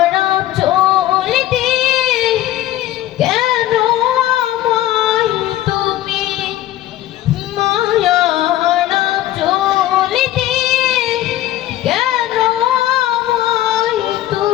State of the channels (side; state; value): right; quieter; 14.0 dB